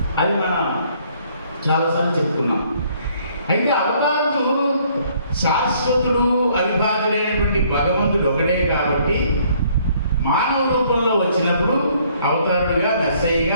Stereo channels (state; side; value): inverted; both; correlation -0.63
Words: అది మనం చాలాసార్లు చెప్పుకున్నాం. అయితే అవతారుడు శాశ్వతుడు అవిభాజుడైనటువంటి భగవంతుడు ఒకటే కాబట్టి మానవ రూపంలో వచ్చినప్పుడు అవతారుడుగా,